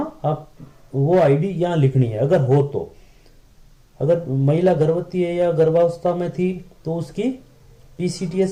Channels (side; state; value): both; identical; correlation 1.00